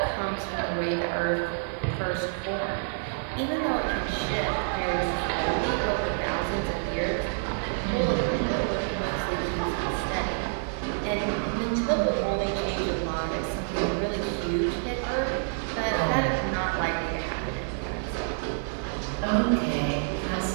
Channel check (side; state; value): left; silent; 59 dB below the other